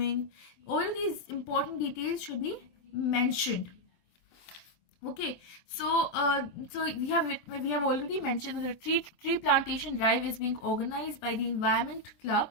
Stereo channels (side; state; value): right; late; 24 ms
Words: All these important details should be mentioned. Okay, so we have already mentioned that the tree plantation drive is being organized by the Environment Club